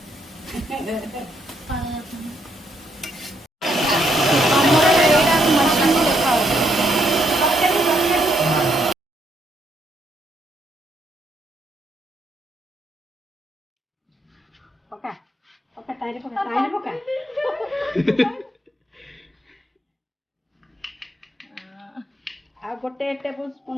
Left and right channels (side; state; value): both; normal; correlation 0.74